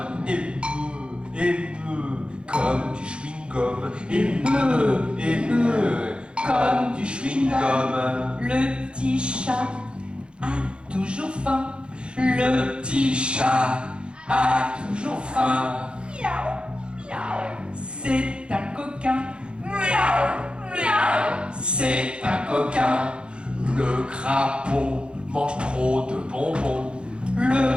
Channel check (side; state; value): left; late; 0.055 ms